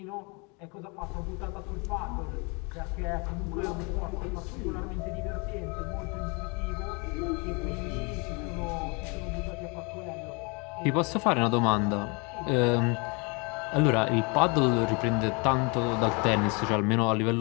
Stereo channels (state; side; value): quieter; right; 31.2 dB